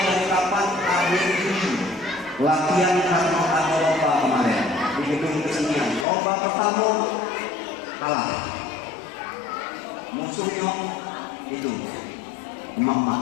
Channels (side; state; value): right; drops out; at 6.1 s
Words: dari kapan? Akhir Juni. Latihan karena ada lomba kemarin di gedung kesenian. Lomba pertama kalah. Musuhnya itu